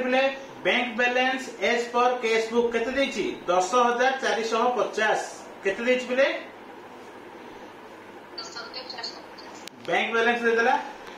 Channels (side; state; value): both; identical; correlation 1.00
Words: पिले bank balance as per cash book केते देछि 10,450 केते देछि पिले बैंक बैलेंस दे देला